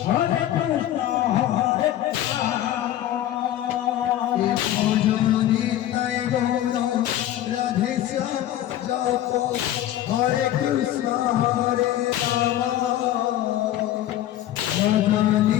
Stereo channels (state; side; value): quieter; right; 12.8 dB